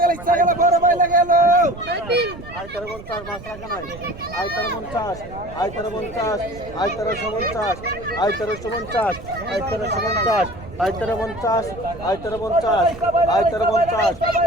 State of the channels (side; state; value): right; noise; rumble, 15 dB below the sound